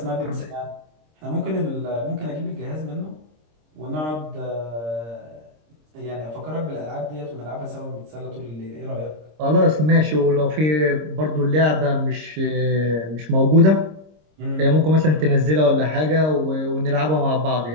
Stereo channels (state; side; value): late; left; 26 ms